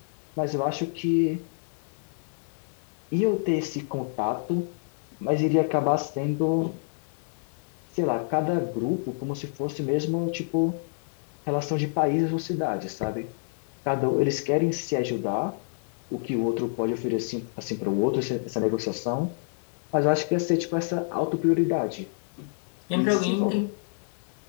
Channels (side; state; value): right; silent; digital silence